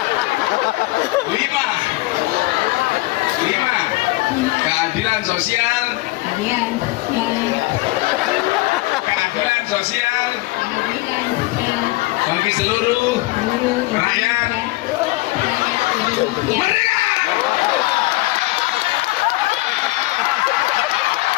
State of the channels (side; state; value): right; quieter; 21.1 dB